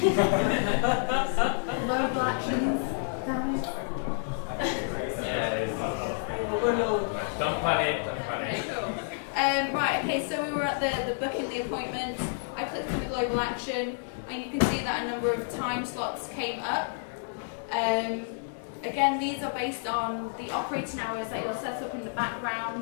Global actions, damn it. Don't panic, don't panic. Okay, cool. Right, okay, so we were at the booking the appointment. I clicked on the global action, and you can see that a number of time slots came up. Again, these are based on the operating hours that you'll set up in the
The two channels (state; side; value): silent; right; digital silence